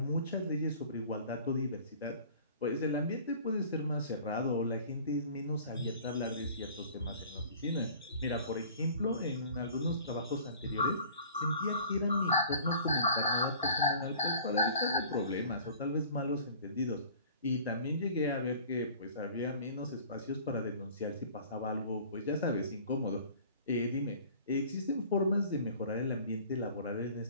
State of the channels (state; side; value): inverted; both; correlation -0.47